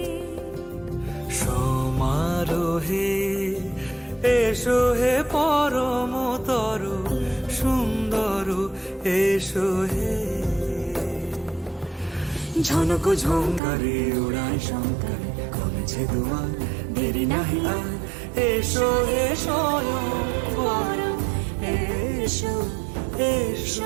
সমারোহে এসো হে পরমতর সুন্দর এসো হে ঝনক ঝঙ্কারে উড়ায় শঙ্কারে খুলেছে দুয়ার দেরি নাহি আর এসো হে স্বয়ং এসো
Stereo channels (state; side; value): drops out; left; at 13.6 s